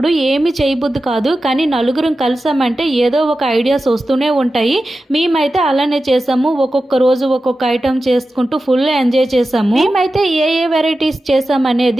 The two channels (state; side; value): normal; both; correlation 0.93